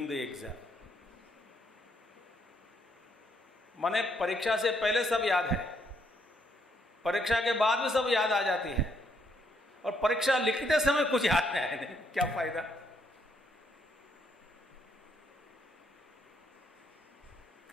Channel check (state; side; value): normal; both; correlation 0.72